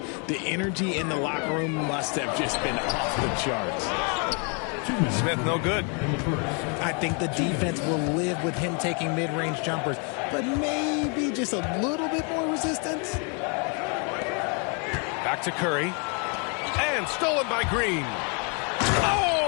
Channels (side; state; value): right; quieter; 36.3 dB